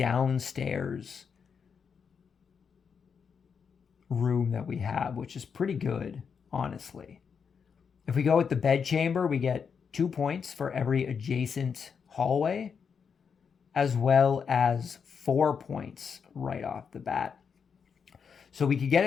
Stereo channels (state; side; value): quieter; right; 6.4 dB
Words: room that we have, which is pretty good, honestly. If we go with the bedchamber, we get 2 points for every adjacent hallway, as well as 4 points right off the bat. So we could get